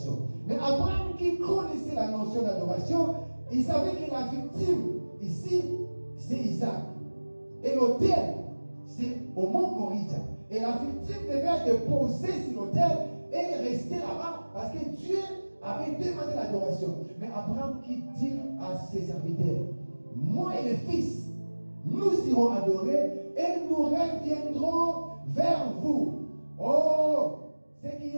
Mais Abraham, qui connaissait la notion d'adoration, il savait que la victime, ici, c'est Isaac. Et l'autel, c'est au mont Moriah. Et la victime devait être déposée sur l'autel et rester là-bas parce que Dieu avait demandé l'adoration. Mais Abraham qui dit à ses serviteurs, moi et les fils, nous irons adorer et nous reviendrons vers vous. Oh, ce qui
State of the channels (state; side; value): inverted; both; correlation -1.00